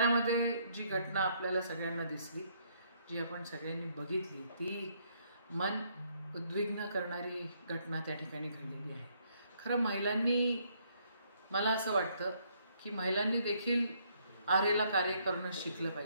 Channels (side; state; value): both; inverted; correlation -0.69